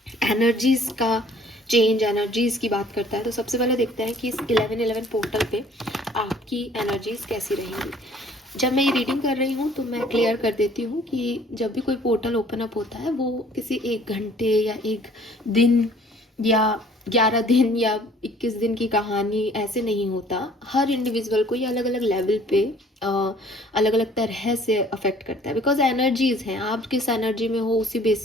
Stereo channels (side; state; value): both; normal; correlation 0.55